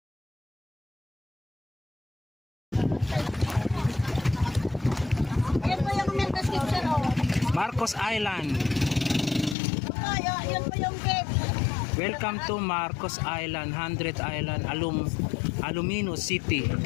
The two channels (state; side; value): drops out; right; at 9.6 s